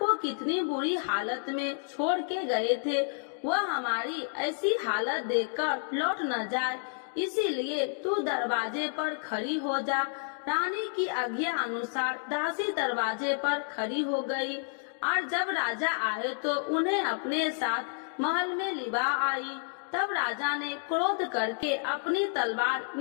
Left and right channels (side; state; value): right; silent; digital silence